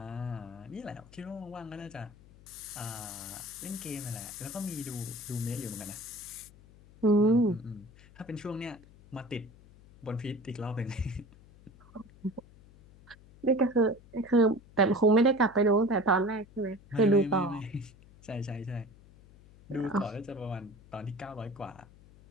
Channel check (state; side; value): noise; left; hum, 23 dB below the sound